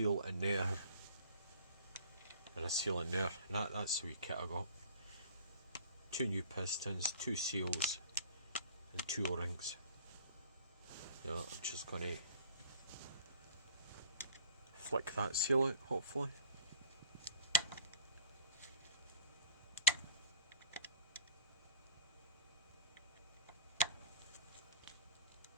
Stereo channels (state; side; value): inverted; both; correlation -0.50